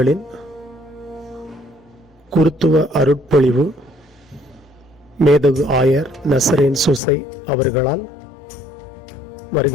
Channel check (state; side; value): drops out; right; at 7.0 s